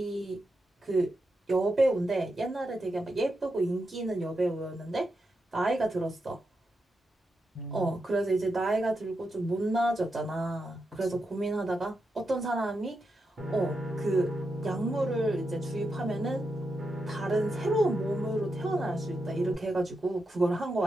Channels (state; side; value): normal; both; correlation 0.86